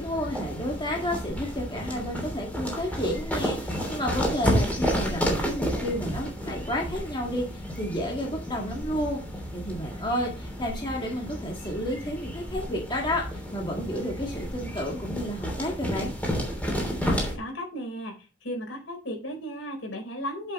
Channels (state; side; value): normal; both; correlation 0.55